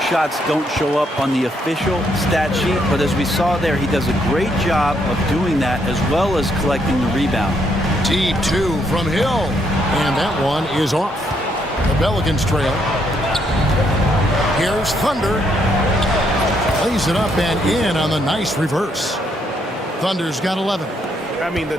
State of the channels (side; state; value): both; normal; correlation 0.74